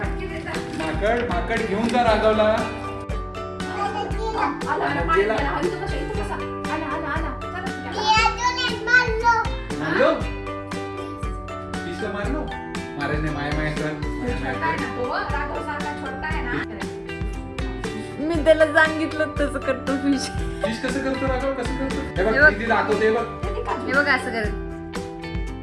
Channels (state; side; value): identical; both; correlation 1.00